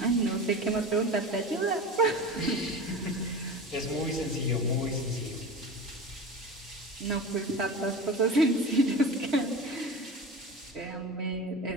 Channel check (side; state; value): both; normal; correlation 0.31